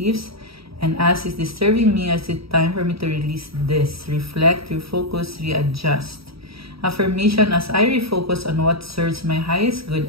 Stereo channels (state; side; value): late; left; 0.76 ms